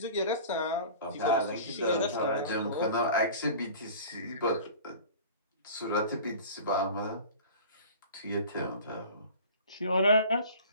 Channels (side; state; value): both; inverted; correlation -0.40